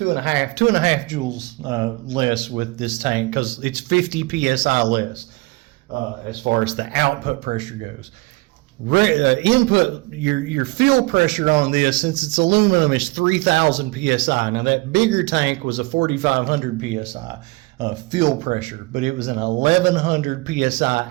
joules less with this tank, because it's 50 psi less as far as the output pressure goes. Input, your fill pressure on this, since it's aluminum, is 3,000 psi. Now that bigger tank was a 4,500 psi fill pressure, but it was an 1,100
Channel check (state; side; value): quieter; left; 23.4 dB